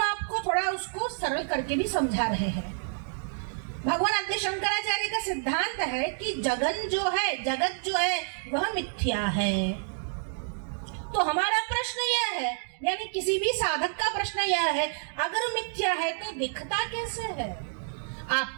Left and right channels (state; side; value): silent; left; digital silence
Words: आपको थोड़ा उसको सरल करके भी समझा रहे हैं। भगवान आद्य शंकराचार्य का सिद्धांत है कि जगत जो है वह मिथ्या है। तो हमारा प्रश्न यह है, यानी किसी भी साधक का प्रश्न यह है, अगर मिथ्या है तो दिखता कैसे है?